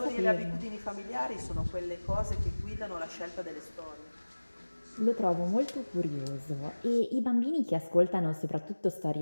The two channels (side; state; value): both; inverted; correlation -1.00